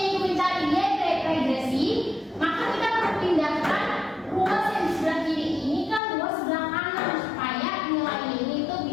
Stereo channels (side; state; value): right; drops out; at 6.0 s